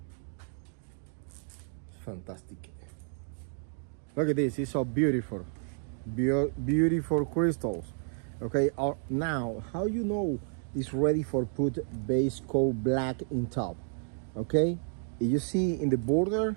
Fantastic. Look at this. It's so beautiful. Beautiful crystals. Okay, now how you know it's ready for put base coat black in top? Okay, you see in the border,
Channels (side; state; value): left; silent; 57 dB below the other